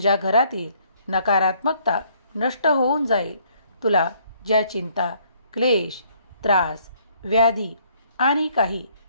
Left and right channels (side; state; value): both; inverted; correlation -0.64